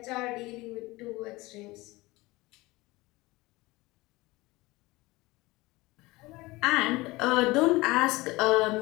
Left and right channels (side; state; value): right; quieter; 21.1 dB